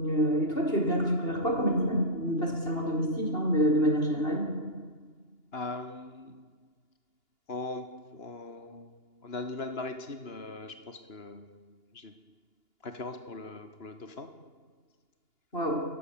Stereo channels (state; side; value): late; right; 2.9 ms